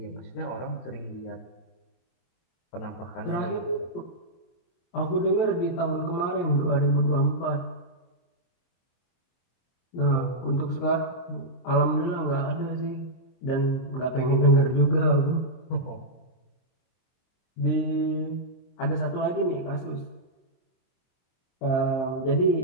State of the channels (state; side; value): late; right; 23 ms